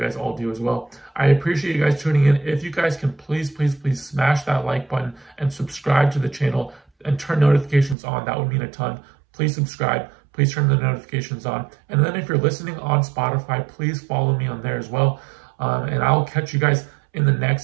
all do as well. I appreciate you guys tuning in. If you guys can please smash that like button and subscribe to the channel and turn notifications on, that would mean a ton. Please subscribe. Please turn the notifications on. And then if you're listening on Spotify, please follow me on there as well. And I'll catch you guys in the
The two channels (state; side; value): drops out; left; at 8.0 s